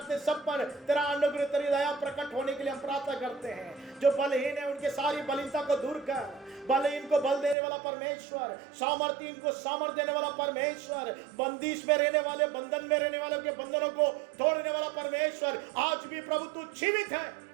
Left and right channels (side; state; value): left; drops out; at 7.6 s